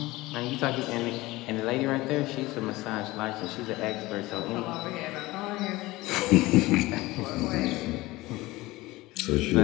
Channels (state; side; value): quieter; right; 19.7 dB